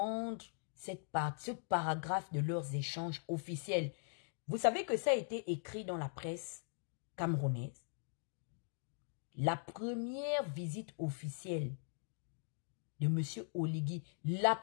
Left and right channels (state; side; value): silent; right; digital silence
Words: ce paragraphe de leurs échanges officiels. Vous savez que ça a été écrit dans la presse camerounaise. La première visite officielle de M. Oligui, la